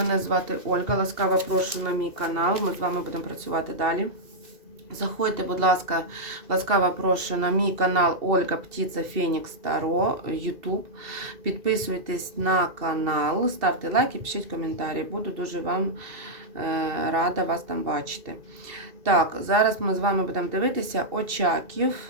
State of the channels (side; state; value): left; late; 2.7 ms